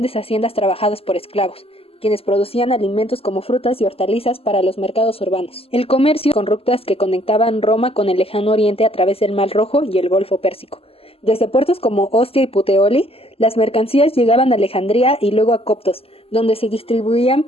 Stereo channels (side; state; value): right; late; 0.28 ms